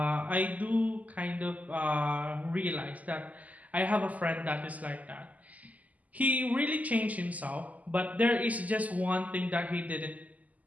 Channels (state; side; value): late; left; 0.076 ms